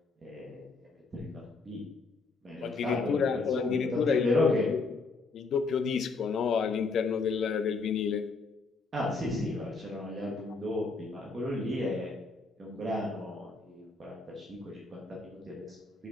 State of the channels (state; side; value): quieter; right; 4.0 dB